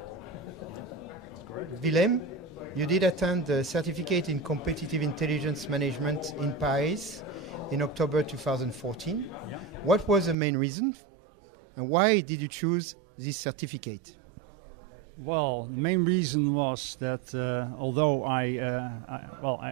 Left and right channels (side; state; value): left; drops out; at 10.4 s